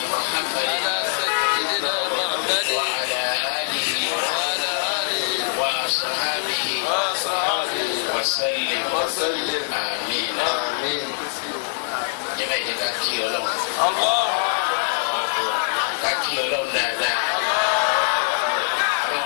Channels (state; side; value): silent; right; digital silence